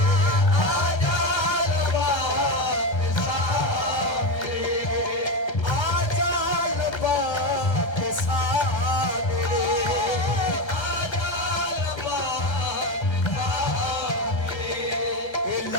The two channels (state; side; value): late; right; 1.3 ms